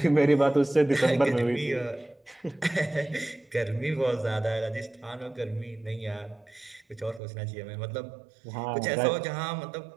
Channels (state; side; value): drops out; left; at 7.2 s